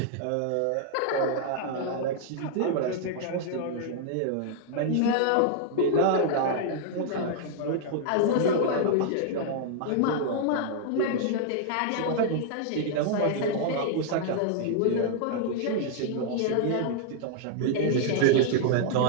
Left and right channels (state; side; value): different; both; correlation 0.00